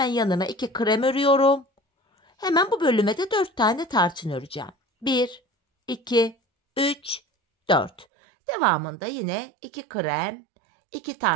yanına 2 krem örüyorum. Hemen bu bölüme de 4 tane tarçın öreceğim. 1, 2, 3, 4. Devamında yine 2 krem, 2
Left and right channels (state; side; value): drops out; left; at 8.1 s